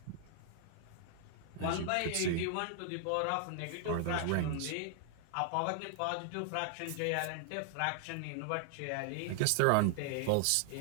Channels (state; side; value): different; both; correlation 0.00